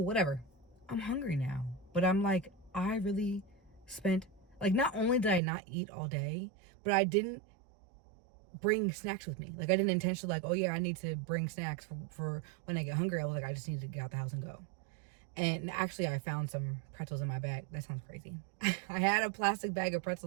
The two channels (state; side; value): drops out; left; at 5.4 s